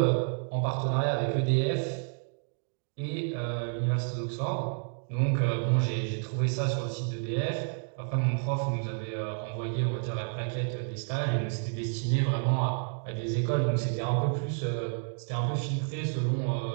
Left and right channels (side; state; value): left; silent; 58 dB below the other